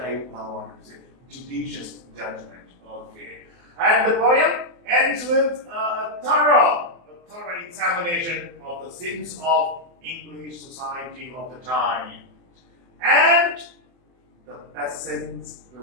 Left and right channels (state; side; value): late; left; 24 ms